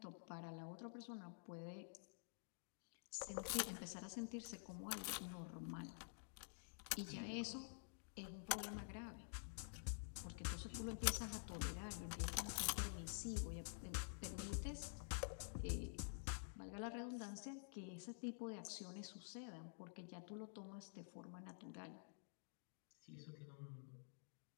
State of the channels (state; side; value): silent; right; digital silence